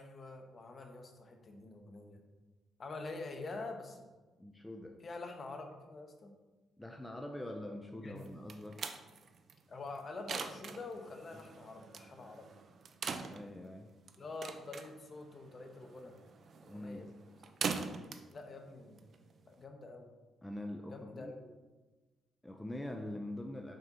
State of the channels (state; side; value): normal; both; correlation 0.81